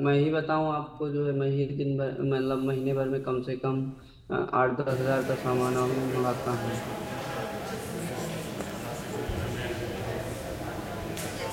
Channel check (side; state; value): both; identical; correlation 1.00